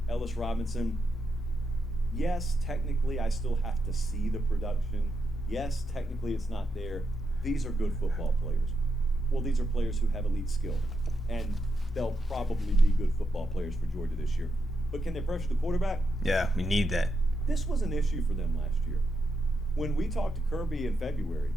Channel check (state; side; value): normal; both; correlation 0.83